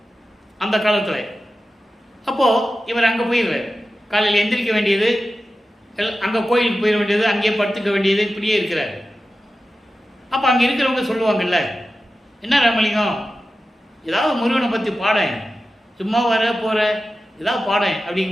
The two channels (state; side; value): normal; both; correlation 0.93